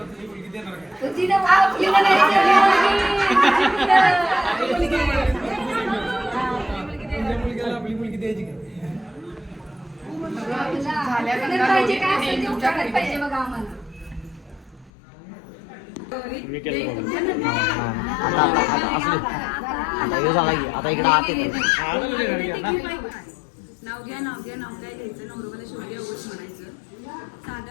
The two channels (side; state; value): right; drops out; at 14.9 s